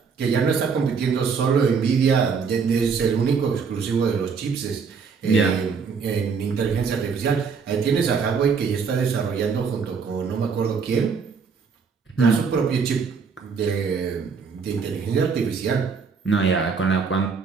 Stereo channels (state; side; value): quieter; left; 5.7 dB